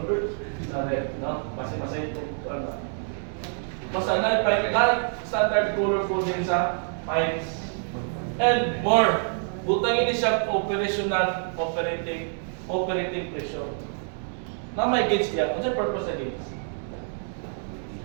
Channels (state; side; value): silent; left; 60 dB below the other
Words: Sa red, no? Masay ito. Basta na standard color po din sa pipes. And more, butangin siya operational, operating pressure. Na may gauge niya. Ano siya purpose sa gauge?